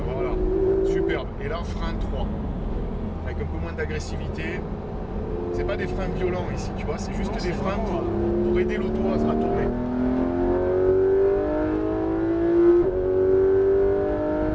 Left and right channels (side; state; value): both; identical; correlation 1.00